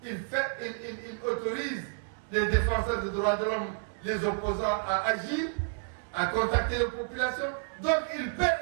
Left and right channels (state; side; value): silent; left; digital silence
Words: il autorise les défenseurs des droits de l'homme, les opposants à agir, à contacter les populations. Donc il peut